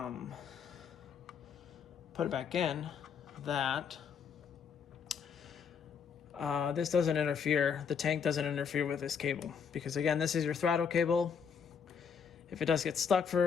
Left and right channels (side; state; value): right; quieter; 6.7 dB